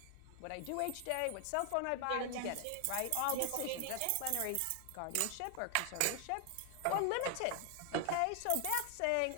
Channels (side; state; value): both; different; correlation 0.00